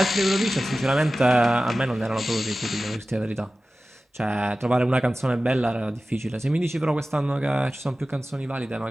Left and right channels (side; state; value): both; normal; correlation 0.96